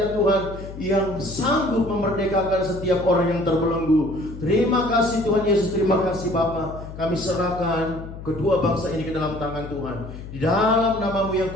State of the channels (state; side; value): noise; left; hum, 12 dB below the sound